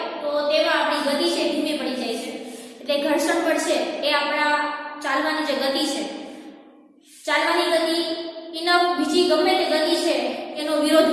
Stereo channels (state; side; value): identical; both; correlation 1.00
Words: તો તેમાં આપણી ગતિ છે ધીમી પડી જાય છે. એટલે ઘર્ષણ બળ છે એ આપણા ચાલવાની જે ગતિ છે, ચાલવાની ગતિ એના બીજી ગમે તે ગતિ છે એનો વિરોધ